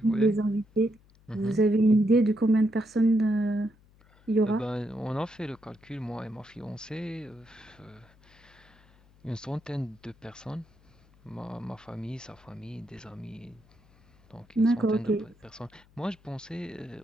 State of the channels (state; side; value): noise; left; hum, 29 dB below the sound